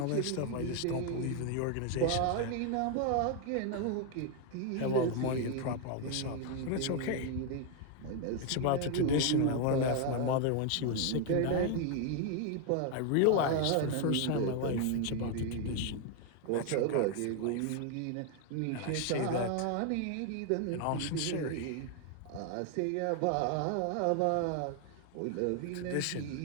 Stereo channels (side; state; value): both; different; correlation 0.01